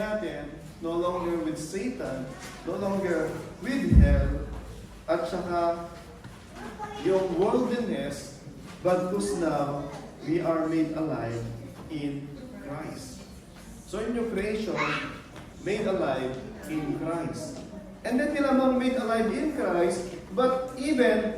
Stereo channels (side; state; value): both; identical; correlation 1.00